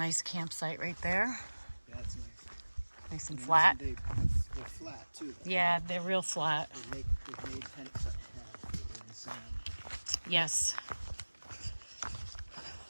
campsite right there. Yeah, that's nice. Nice and flat. They're flat too. Yeah, they're real flat. They've made tents in the sand. Yes.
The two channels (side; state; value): both; inverted; correlation -1.00